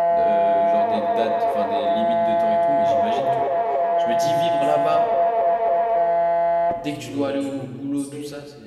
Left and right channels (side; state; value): both; identical; correlation 1.00